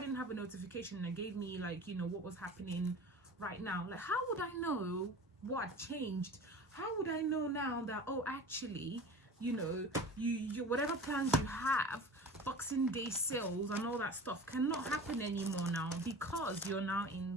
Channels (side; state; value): both; normal; correlation 0.37